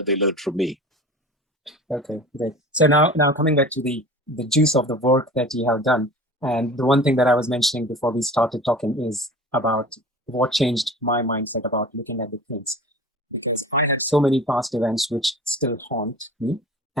learned from me. Okay, great. So now coming back to the the juice of the work that you have done. And the one thing that I was mentioning before we started talking is about what changed my mindset about looking at the things. Because I had so many past events which still haunt me.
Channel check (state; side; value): normal; both; correlation 0.39